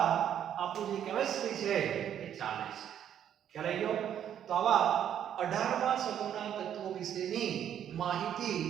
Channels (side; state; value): left; quieter; 9.8 dB